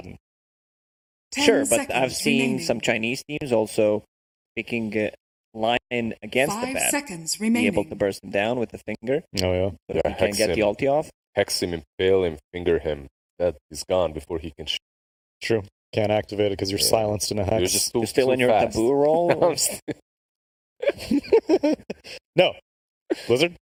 Sure, but I've seen some Chinese teams also picking Lion against the 5 Baden. seconds Be remaining. able to burst him down with the finger. Oh, yeah. But if he can get the ulti off. Hex him, impale him, finger him. That is gone before he can shoot. True. Can't activate it because you're silenced in a hex. You're still in your fast. taboo roll? No. Blizzard?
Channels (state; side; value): identical; both; correlation 1.00